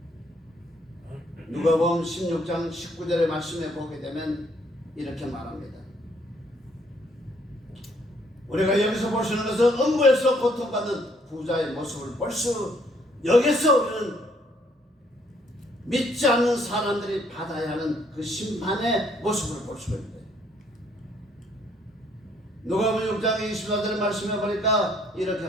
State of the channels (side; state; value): both; normal; correlation 0.66